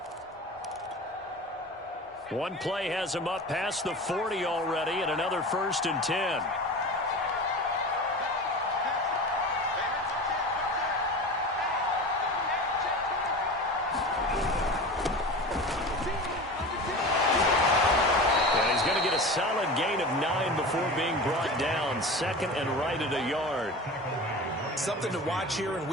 One play has him up past the 40 already, and another 1st and 10. Solid gain of 9 before being brought down. Second and right at a yard. Something to watch here in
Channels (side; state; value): both; normal; correlation 0.32